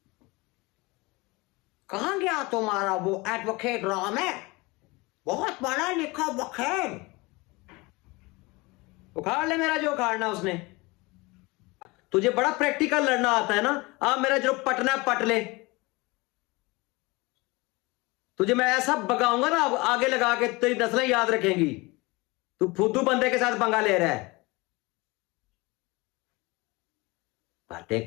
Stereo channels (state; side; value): quieter; right; 24.1 dB